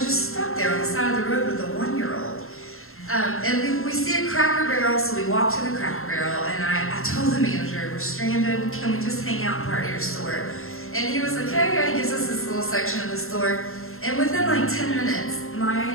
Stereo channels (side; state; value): right; late; 0.62 ms